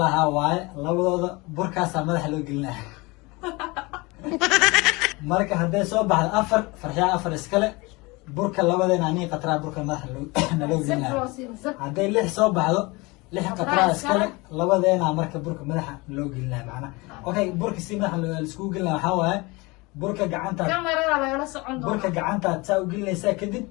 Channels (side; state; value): right; quieter; 24.7 dB